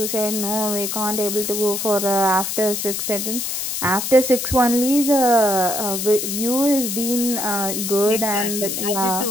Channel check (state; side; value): noise; left; hiss, 3 dB below the sound